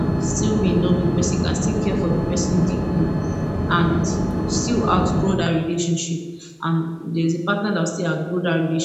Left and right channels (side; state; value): both; identical; correlation 1.00